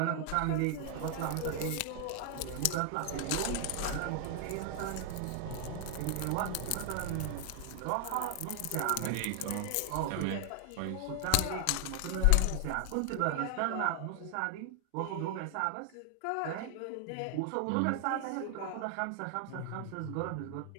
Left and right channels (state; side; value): different; both; correlation 0.00